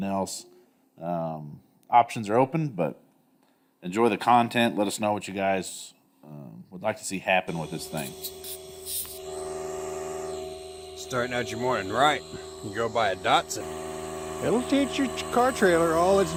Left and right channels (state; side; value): identical; both; correlation 1.00